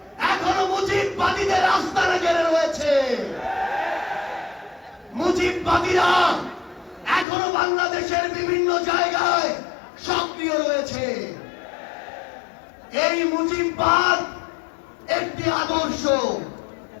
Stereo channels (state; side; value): drops out; right; at 7.2 s